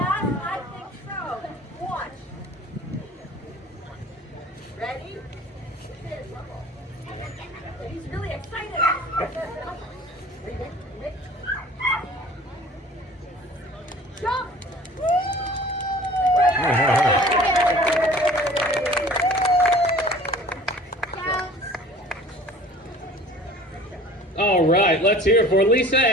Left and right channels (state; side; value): normal; both; correlation 0.47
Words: I think so. Watch. Ready? He's really excited. Mick. Jump! Counts. All right, let's hear it for Lisa